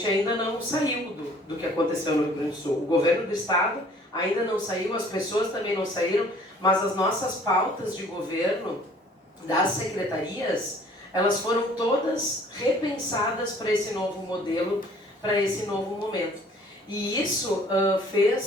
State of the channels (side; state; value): both; normal; correlation 0.55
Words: ainda não saiu do que aconteceu no Rio Grande do Sul. O governo do estado ainda não saiu, as pessoas também não saíram, mas as nossas pautas de governo das secretarias, elas foram todas repensadas para esse novo modelo, para esse novo momento. E isso